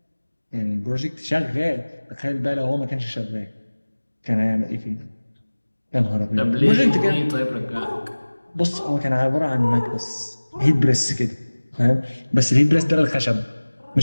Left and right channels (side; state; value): both; inverted; correlation -1.00